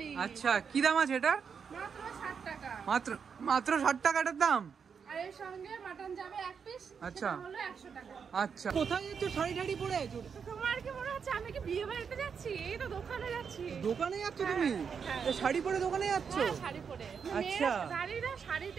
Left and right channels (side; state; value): left; quieter; 6.5 dB